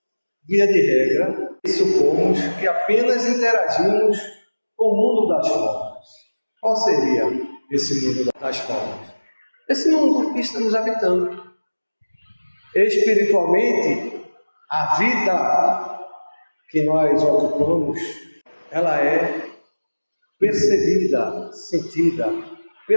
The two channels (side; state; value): both; inverted; correlation -1.00